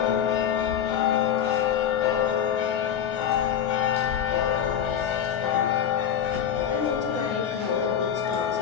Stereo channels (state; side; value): quieter; right; 8.8 dB